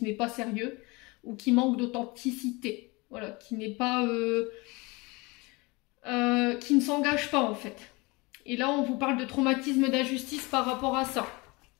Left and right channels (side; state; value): right; quieter; 25.4 dB